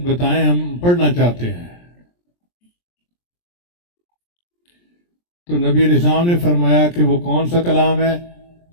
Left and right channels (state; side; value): late; right; 23 ms